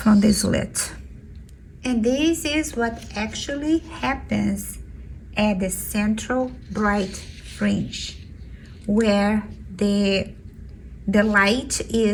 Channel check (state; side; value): identical; both; correlation 1.00